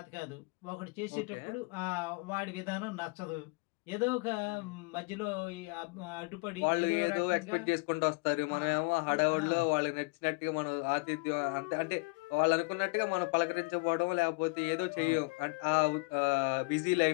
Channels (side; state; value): right; quieter; 30.4 dB